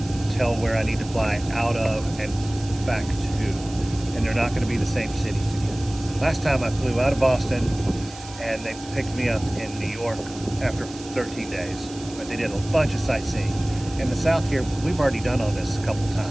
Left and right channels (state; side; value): noise; right; hiss, 17 dB below the sound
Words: tell where I need to fly out of and back to, and they're not going to be the same cities again. Last time I flew out of Boston, and they picked me up in New York after 13 days. But they did a bunch of sightseeing. In the south here, we've already done all this a couple